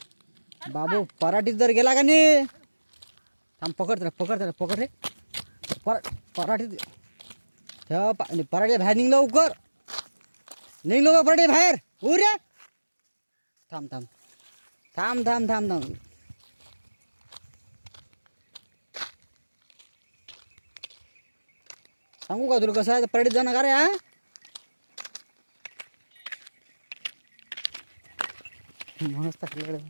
बाबू पराठीत जर गेला का नाही, थांब पकड रे. पराठीत पराठी बाहेर निघ लवकर, निघ लवकर पराठी बाहेर. रे थांब थांब थांब थांब थांब थांब. सांगू का तुला कसं आहे पराठीत जाणं का रे? हा मस्त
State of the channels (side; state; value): both; inverted; correlation -1.00